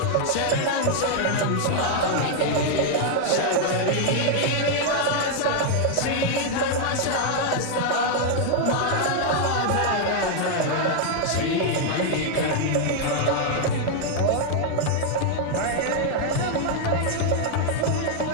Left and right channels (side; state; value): both; different; correlation 0.00